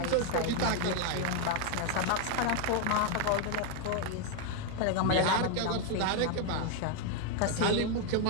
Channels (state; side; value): different; both; correlation 0.01